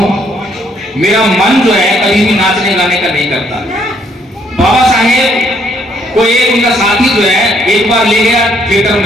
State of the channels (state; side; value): normal; both; correlation 0.68